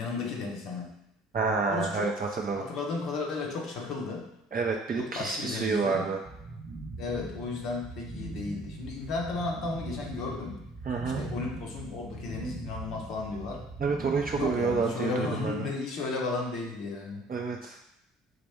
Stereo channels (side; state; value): both; normal; correlation 0.52